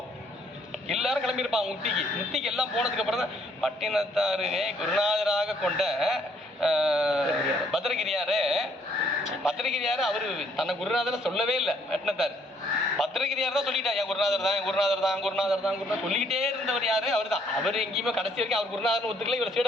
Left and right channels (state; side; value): normal; both; correlation 0.66